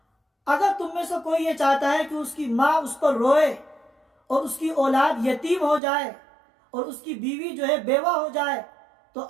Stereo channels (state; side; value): drops out; left; at 5.8 s